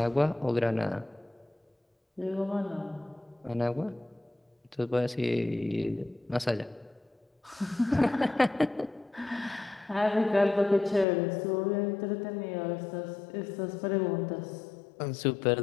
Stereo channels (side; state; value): right; drops out; at 11.1 s